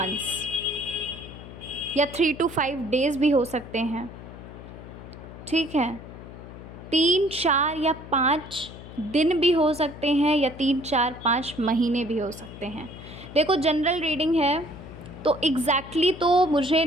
या 3 to 5 days भी हो सकते हैं। ठीक है। 3, 4 या 5 दिन भी हो सकते हैं, या 3, 4, 5 महीने भी हो सकते हैं। देखो, जनरल रीडिंग है तो एग्जैक्टली तो मुझे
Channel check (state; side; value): noise; left; hum, 14 dB below the sound